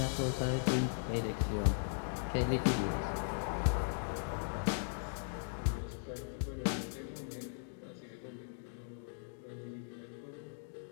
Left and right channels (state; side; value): silent; right; digital silence